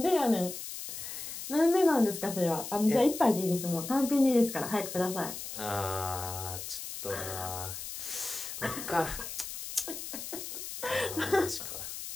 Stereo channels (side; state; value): left; noise; hiss, 8 dB below the sound